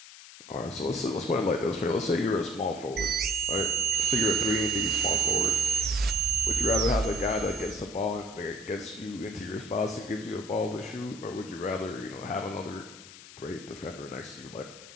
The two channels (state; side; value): noise; left; hiss, 17 dB below the sound